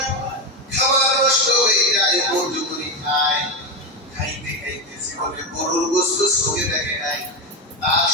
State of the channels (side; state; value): both; normal; correlation 0.11